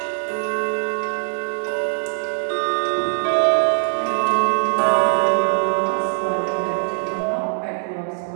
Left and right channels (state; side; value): silent; left; digital silence